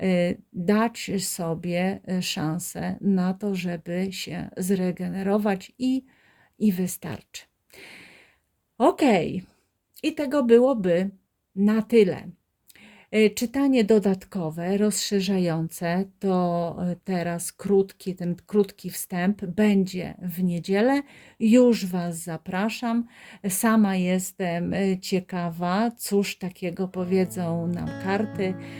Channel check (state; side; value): identical; both; correlation 1.00